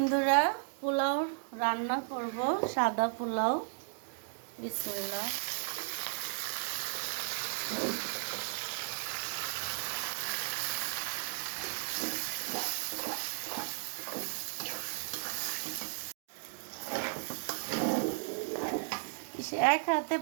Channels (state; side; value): silent; left; digital silence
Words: পোলাও রান্না করব, সাদা পোলাও। বিসমিল্লাহ। এক হাতে